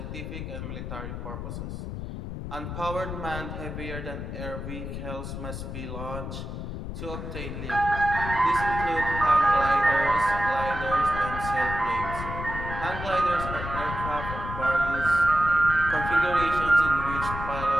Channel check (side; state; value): left; noise; rumble, 7 dB below the sound